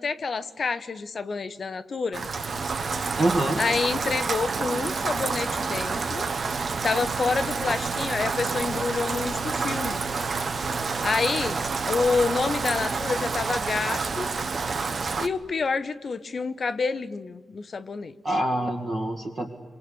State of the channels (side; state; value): both; normal; correlation 0.86